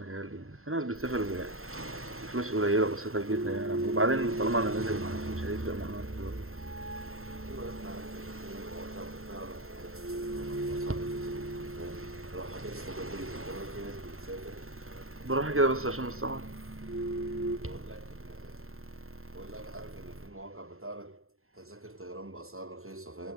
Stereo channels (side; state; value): left; late; 0.62 ms